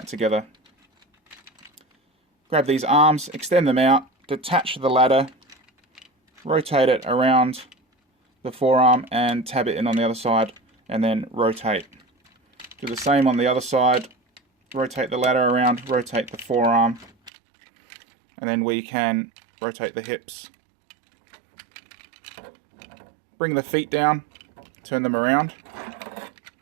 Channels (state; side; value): drops out; left; at 17.3 s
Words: together. Grab these arms, extend them out, detach the ladder, rotate it around the forearm and tab it in on the other side, and then rotate. Do the same on the other side, rotate the ladder around, rotate the forearm, and then we can rotate the hips. Bring the feet down, turn them around,